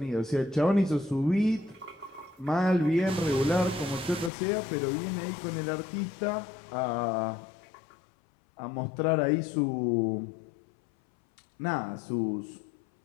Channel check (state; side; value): drops out; right; at 4.3 s